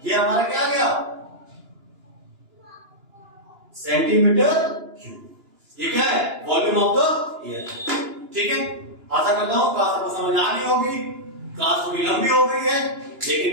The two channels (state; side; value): late; left; 2.9 ms